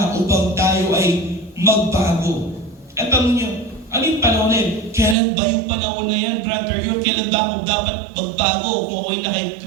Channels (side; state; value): left; drops out; at 5.2 s